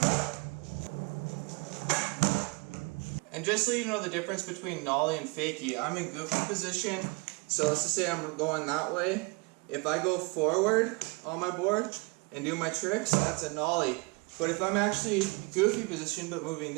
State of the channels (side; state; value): left; quieter; 28.8 dB